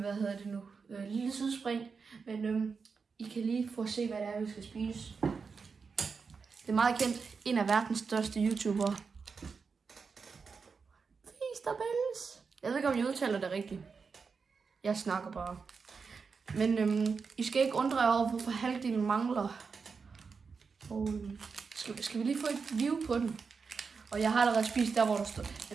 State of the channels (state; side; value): quieter; left; 5.2 dB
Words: hedder det nu? Lille sidespring, men I kan lige få at se, hvad det er, vi skal spise. Det er meget kendt, en af verdens største YouTubere. Feasterbells. Jeg ved ikke, om jeg udtaler det rigtigt. Jeg snakker bare. Men I skal ikke undre jer over, hvorfor halvdelen mangler. Og skal vi lige få et view på den? Og jeg har allerede spist der, hvor der står.